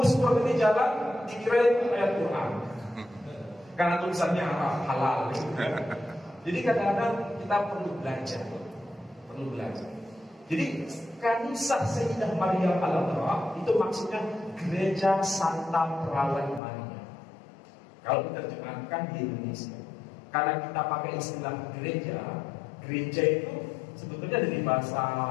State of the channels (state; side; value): drops out; right; at 16.6 s